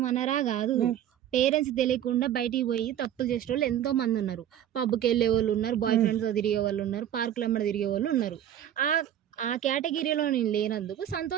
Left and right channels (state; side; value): quieter; left; 10.8 dB